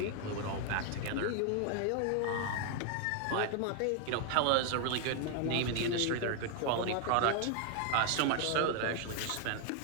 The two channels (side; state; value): both; different; correlation 0.00